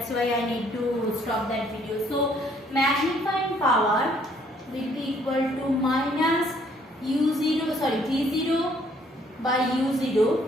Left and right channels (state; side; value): normal; both; correlation 0.64